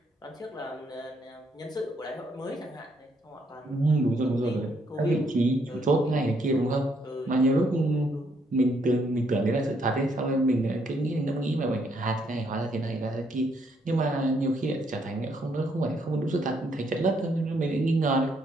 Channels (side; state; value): both; normal; correlation 0.72